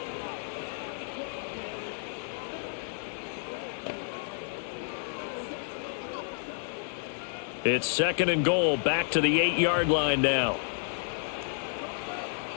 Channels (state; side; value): silent; right; 56 dB below the other